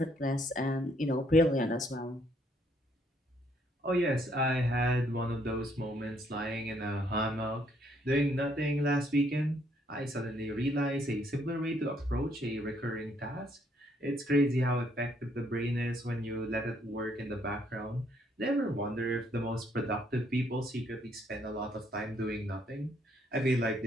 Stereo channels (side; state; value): both; normal; correlation 0.69